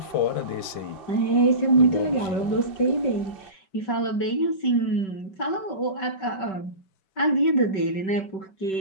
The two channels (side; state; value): right; late; 5.2 ms